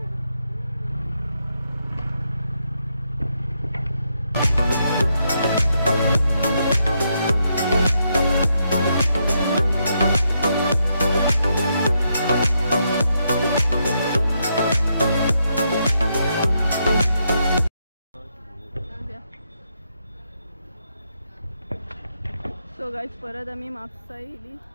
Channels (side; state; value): both; inverted; correlation -0.79